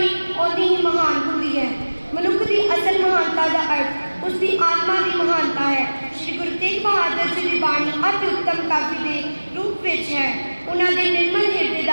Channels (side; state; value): both; inverted; correlation -1.00